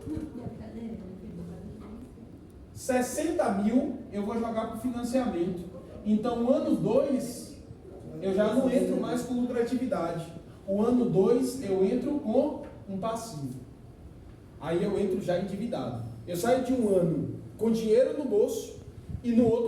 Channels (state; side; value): identical; both; correlation 1.00